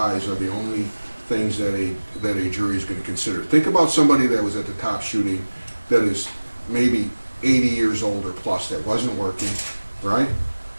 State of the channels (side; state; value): both; inverted; correlation -1.00